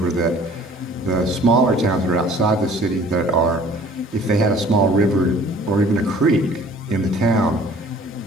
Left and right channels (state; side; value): normal; both; correlation 0.51